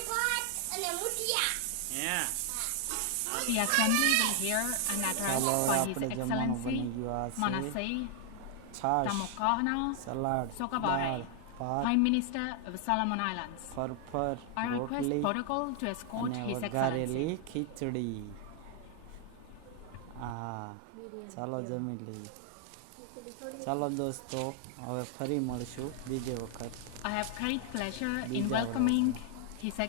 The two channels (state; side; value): different; both; correlation 0.00